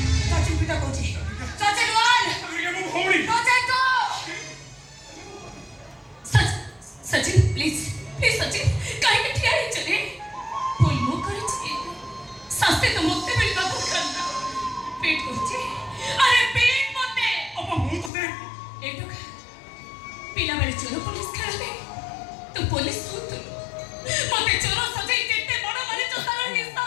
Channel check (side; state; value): right; drops out; at 18.1 s